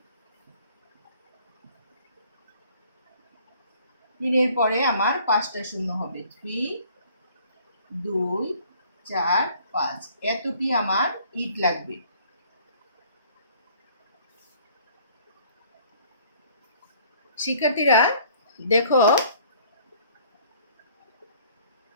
3 এর পরে আমার 5টা শূন্য হবে। 3 2 4 5, এতটি আমার ইট লাগবে। শিক্ষার্থীরা দেখো,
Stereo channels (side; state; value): both; inverted; correlation -0.56